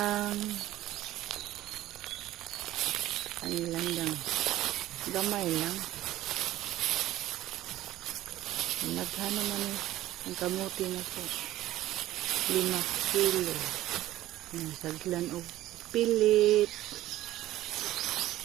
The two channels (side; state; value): left; quieter; 15.1 dB